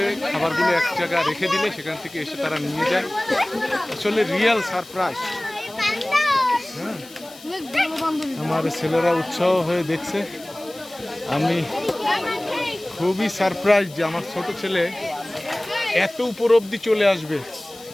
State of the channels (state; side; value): noise; left; hiss, 20 dB below the sound